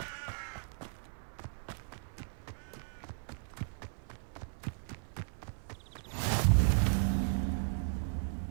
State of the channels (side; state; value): left; silent; 54 dB below the other